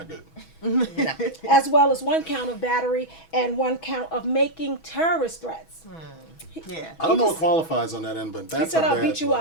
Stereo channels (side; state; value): right; late; 6.2 ms